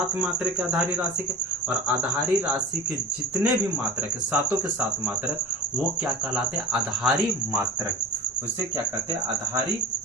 मात्रक है आधारी राशि के, और आधारी राशि के जितने भी मात्रक है, सातों के सात मात्रक, वो क्या कहलाते हैं? आधारी मात्रक। उसे क्या कहते हैं? आधारी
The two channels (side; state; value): both; normal; correlation 0.34